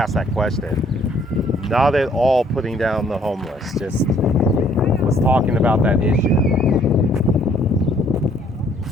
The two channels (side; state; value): both; normal; correlation 0.62